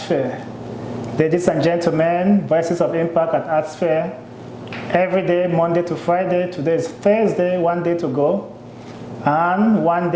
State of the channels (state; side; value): identical; both; correlation 1.00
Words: Ladies and gentlemen, Voices of Impact at ArtSphere, every day, Monday to Friday. Today is Thursday, one day to go, and one